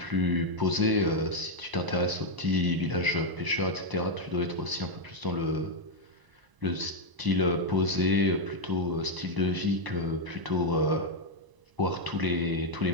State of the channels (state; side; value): late; left; 1.0 ms